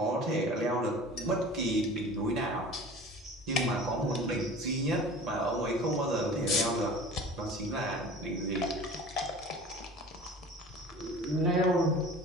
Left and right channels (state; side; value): normal; both; correlation 0.41